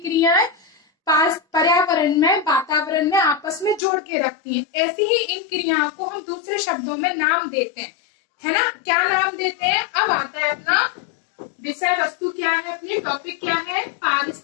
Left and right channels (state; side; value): drops out; right; at 3.8 s